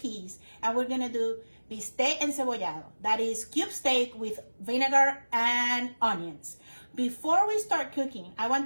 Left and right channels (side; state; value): both; inverted; correlation -1.00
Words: and we're going to do bistec encebollado, that is cube steak with vinegar and onions. Before we start cooking, I